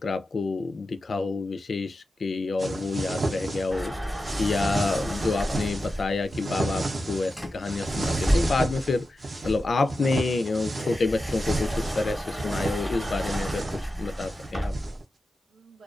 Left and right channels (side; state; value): both; normal; correlation 0.91